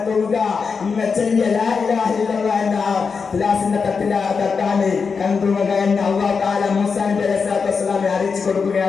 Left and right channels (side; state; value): right; quieter; 5.4 dB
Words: തോന്നുക, നിങ്ങൾ ചെല്ലിയ ലാ ഇലാഹ ഇല്ലല്ലാഹ് എന്ന തുലാസിന്റെ തട്ടാണ് കണ്ടുക എന്ന് അല്ലാഹു തആല മൂസാ നബി അലൈഹിസ്സലാത്തു വസ്സലാമിനെ അറിയിച്ചു